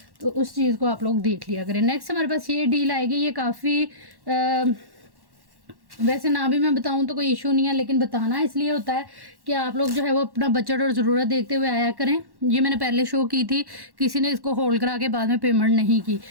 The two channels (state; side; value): late; left; 1.1 ms